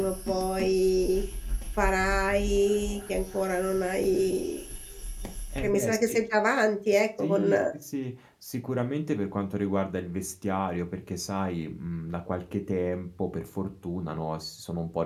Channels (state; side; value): identical; both; correlation 1.00